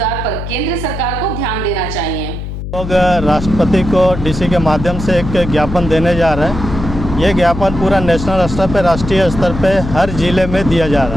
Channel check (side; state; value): left; noise; hum, 7 dB below the sound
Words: पर केंद्र सरकार को ध्यान देना चाहिए। लोग राष्ट्रपति को DC के माध्यम से एक ज्ञापन देने जा रहे हैं। ये ज्ञापन पूरा नेशनल स्तर पे, राष्ट्रीय स्तर पे हर जिले में दिया जा